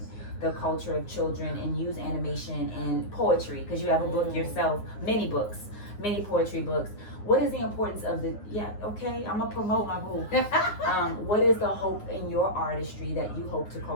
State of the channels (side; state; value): right; late; 9.6 ms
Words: culture of children and use animation and poetry, because you have a book yourself, many poetry books. What is the importance of I'm gonna promote my boo. What is the hope in your artistry that you hope to